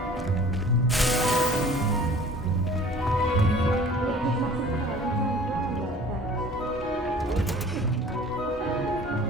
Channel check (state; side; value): normal; both; correlation 0.48